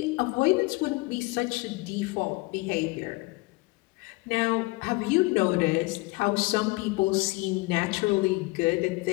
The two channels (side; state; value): right; quieter; 24.2 dB